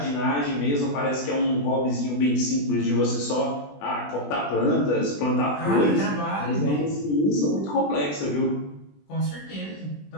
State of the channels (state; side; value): late; right; 20 ms